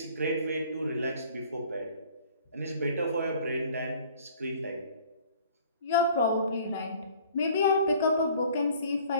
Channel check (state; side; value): inverted; both; correlation -0.52